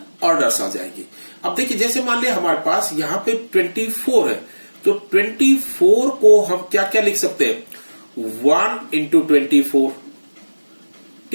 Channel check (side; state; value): both; inverted; correlation -1.00